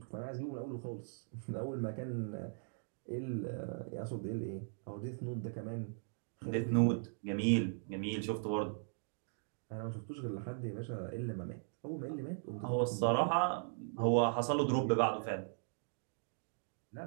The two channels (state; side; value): silent; left; digital silence